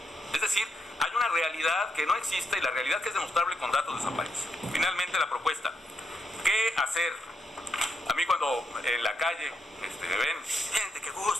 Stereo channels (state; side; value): normal; both; correlation 0.79